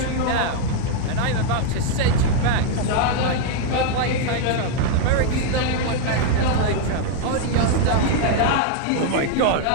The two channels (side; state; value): both; different; correlation 0.00